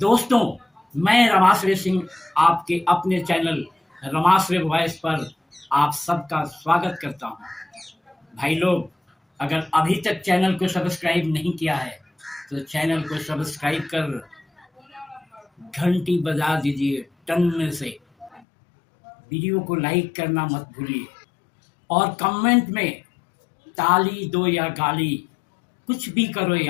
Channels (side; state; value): right; drops out; at 18.4 s